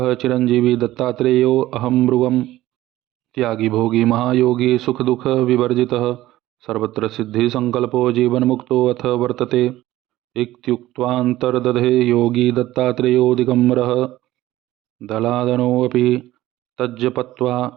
चिरंजीवी दत्तात्रेयो अहं मृगम् त्यागी भोगी महायोगी सुख दुख विवर्जितः सर्वत्र सिद्धि संकल्पो जीवन मुक्तो अथ वर्तते इत्युक्त्वान्तर्दधे योगी दत्तात्रेयो दिगम्बरः दलादनोऽपि तज्जपत्वा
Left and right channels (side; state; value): left; quieter; 15.7 dB